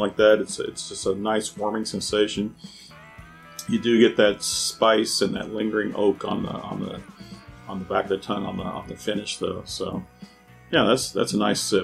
that. It's just a nice warming sensation. You do get that spice and that lingering oak on the back of the tongue on the finish though. So yeah, that's a nice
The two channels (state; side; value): identical; both; correlation 1.00